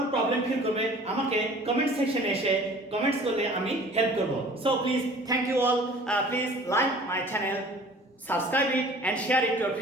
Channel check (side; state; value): both; normal; correlation 0.48